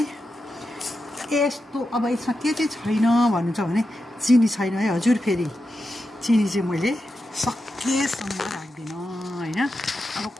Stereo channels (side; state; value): both; normal; correlation 0.89